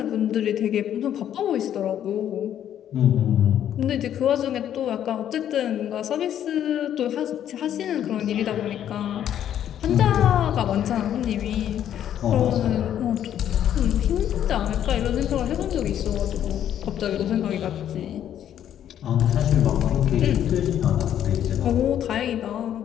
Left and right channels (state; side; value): quieter; right; 10.4 dB